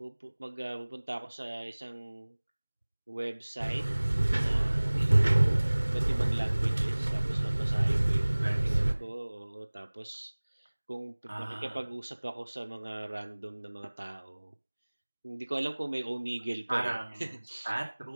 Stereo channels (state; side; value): inverted; both; correlation -1.00